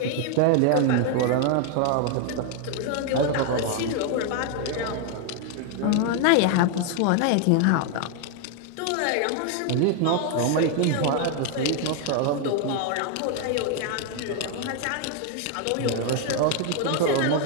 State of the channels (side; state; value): both; different; correlation 0.01